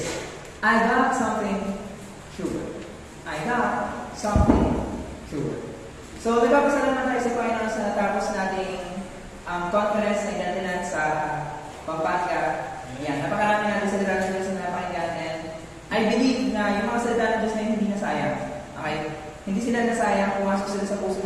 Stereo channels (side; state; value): both; identical; correlation 1.00